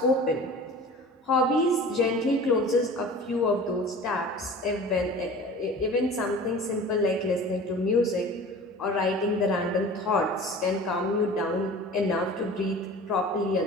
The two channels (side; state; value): both; normal; correlation 0.40